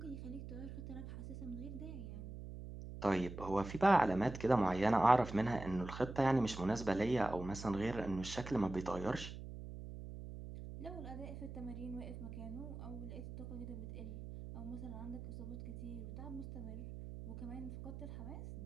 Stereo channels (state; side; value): noise; right; hum, 10 dB below the sound